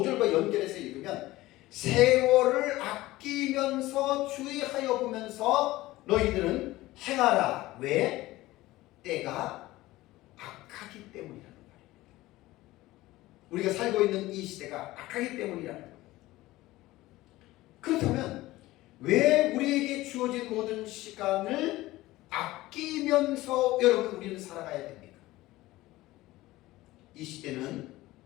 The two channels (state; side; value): quieter; right; 17.8 dB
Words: 연결해서 읽으면, 세월을 아끼면서 주의하여 보면서 너희들은 행하라. 왜? 때가 악하기 때문이라는 말입니다. 우리가 살고 있는 이 시대가 악하기 때문이라는 거예요. 그렇다면 왜 우리에게 주어진 모든 시간을 아끼면서 여러분 우리는 살아가야 됩니까? 이 시대는